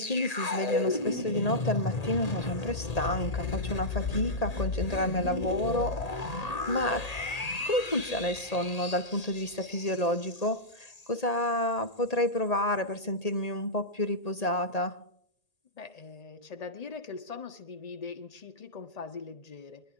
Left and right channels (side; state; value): right; late; 1.8 ms